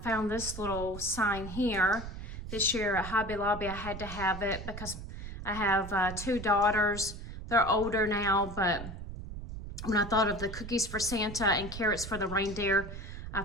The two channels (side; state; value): right; noise; rumble, 9 dB below the sound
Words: found this little sign here. This year at Hobby Lobby, I had to have it because I have 2 daughters. They're older now, but when I thought of the cookies for Santa and carrots for the reindeer, I